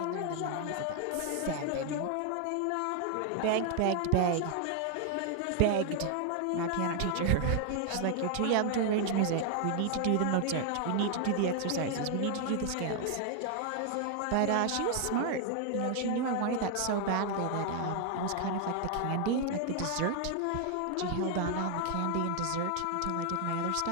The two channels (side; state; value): both; different; correlation 0.00